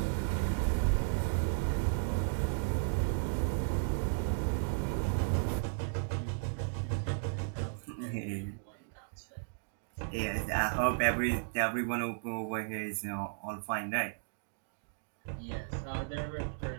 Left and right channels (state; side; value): silent; left; digital silence